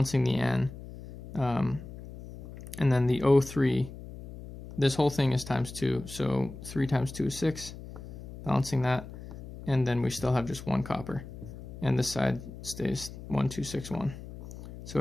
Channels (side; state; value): left; noise; hum, 13 dB below the sound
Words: the N. And then the O3, this whole thing is times 2, so 3 times 2 is 6, balancing that, and then we still have just 1 copper, and this side stays 1, 2, 6, 1. So